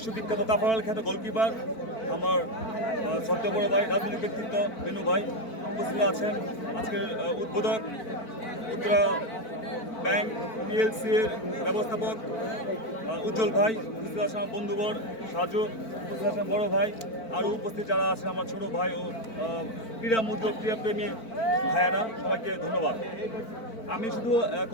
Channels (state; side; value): late; right; 4.5 ms